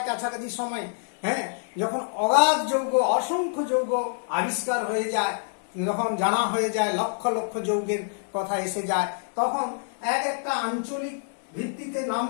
কাছাকাছি সময় যখন অগাধ যৌগ, অসংখ্য যৌগ আবিষ্কার হয়ে যায়, যখন জানা হয়ে যায়, লক্ষ লক্ষ যৌগের কথা এসে যায়, তখন একটা আঞ্চলিক ভিত্তিতে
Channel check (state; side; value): silent; right; digital silence